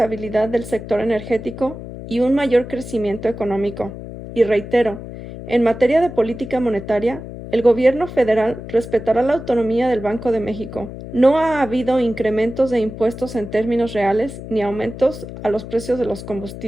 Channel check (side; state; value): left; noise; hum, 11 dB below the sound